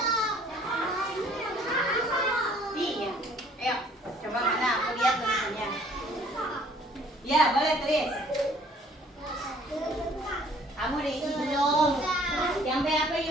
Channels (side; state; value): both; normal; correlation 0.57